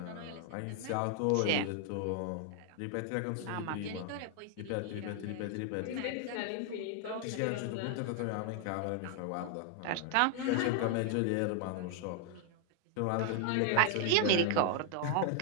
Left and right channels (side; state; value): both; different; correlation 0.00